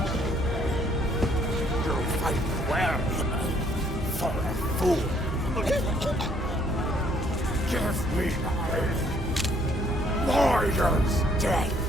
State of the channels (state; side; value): normal; both; correlation 0.65